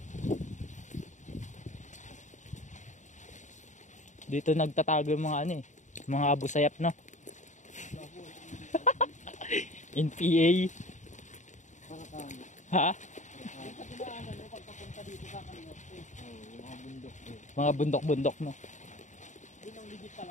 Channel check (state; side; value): late; right; 0.35 ms